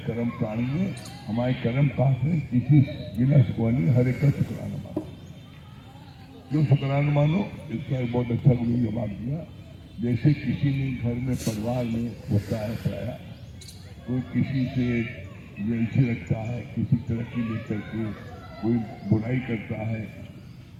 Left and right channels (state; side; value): identical; both; correlation 1.00